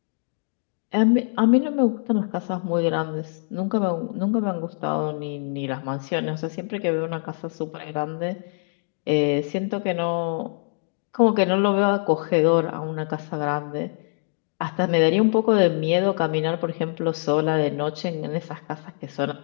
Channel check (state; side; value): silent; right; 62 dB below the other